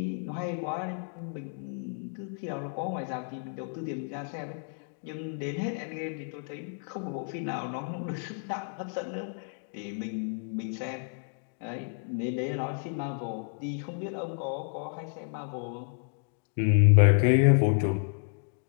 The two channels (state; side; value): silent; right; 55 dB below the other